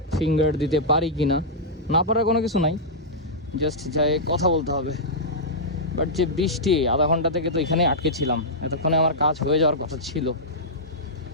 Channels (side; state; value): both; normal; correlation -0.11